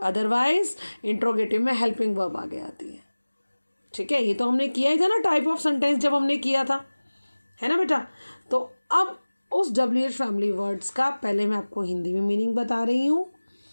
इंट्रोगेटिव में हेल्पिंग वर्ब आगे आती है. ठीक है, ये तो हमने किया ही था ना टाइप ऑफ सेंटेंस जब हमने किया था, है ना बेटा. तो अब उस WH फैमिली वर्ड्स का पहले मैं आपको हिंदी में मीनिंग बता रही हूँ,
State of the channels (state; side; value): inverted; both; correlation -1.00